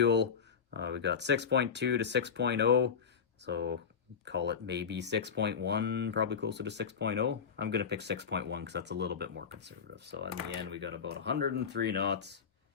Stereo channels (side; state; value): right; quieter; 6.7 dB